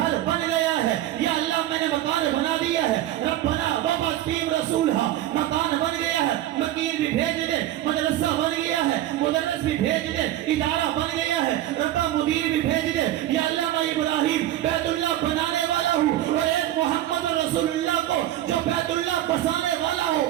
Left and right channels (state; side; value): quieter; left; 13.5 dB